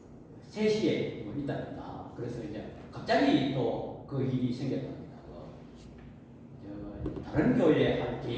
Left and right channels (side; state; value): both; identical; correlation 1.00